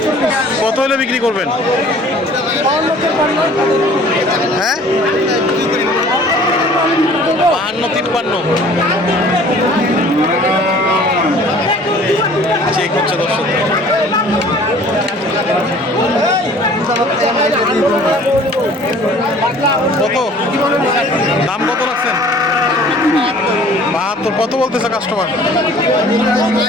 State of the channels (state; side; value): normal; both; correlation 0.50